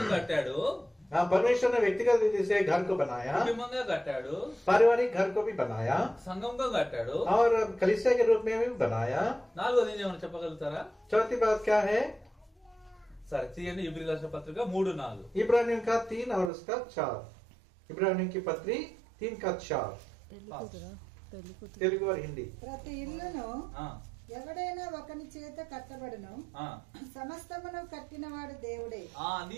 కట్టాడు, परमेश्वर ने व्यक्तिगत रीति से घर को बनाया, కుటుంబంగా కట్టాడు, पारिवारिक घर को भी बनाया సంఘంగా కట్టాడు. और कलीसिया के रूप में भी बनाया. నాలుగోది ఏమైనా చెప్పగలుగుతారా? चौथी बात क्या है? సరే తీయండి, ఇబ్రిల్ రాసిన పత్రిక 3:4. इब्रानियों का 3 और उसका 4. इब्रानियों की पत्री 3 का 4. తెలుగు और हिंदी. ప్రతి ఇల్లును ఆ, ఎవడైనా ఒకని చేత కట్టబడును, ఆ. సమస్తమును కట్టినవాడు దేవుడే.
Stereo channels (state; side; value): drops out; left; at 16.5 s